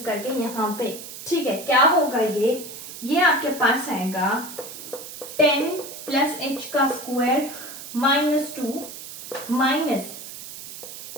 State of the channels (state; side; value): noise; right; hiss, 12 dB below the sound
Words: करके यहाँ पे. ठीक है, क्या होगा ये आपके पास आएगा 10 प्लस h का स्क्वायर माइनस 2 माइनस